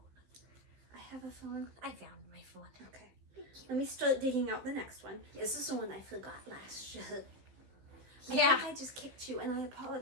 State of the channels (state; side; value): late; left; 15 ms